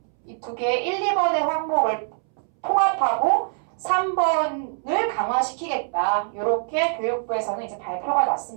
이 2개 1, 2번의 항목을 통합하고 3번을 강화시키겠다. 이렇게 교육부에서는 이제 발표가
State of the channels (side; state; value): left; silent; 63 dB below the other